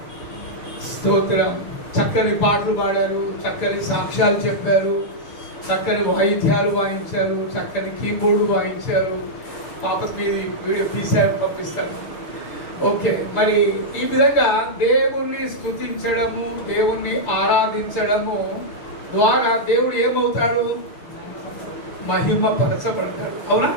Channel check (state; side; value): late; right; 6.8 ms